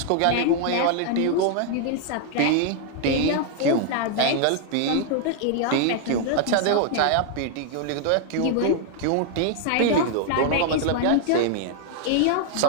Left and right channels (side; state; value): both; different; correlation 0.00